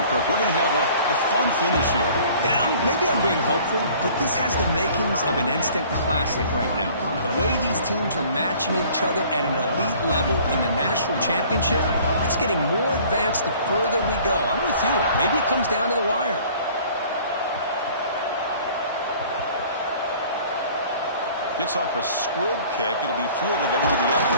Kirk. We're going to have a fun finish here. Yeah, maybe I'm being hopeful, but this has the makings of an instant classic right now. The way these teams are matching each other at an elite level in the national championship, it's getting more advanced the further we go. I'm with you. Maybe it comes down to the wire. Gets off a squib kick. It'll be fielded by one of the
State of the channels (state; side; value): inverted; both; correlation -0.51